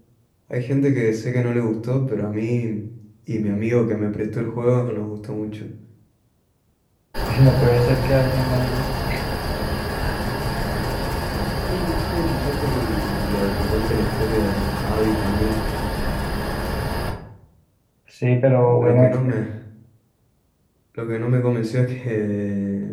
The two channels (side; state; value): both; identical; correlation 1.00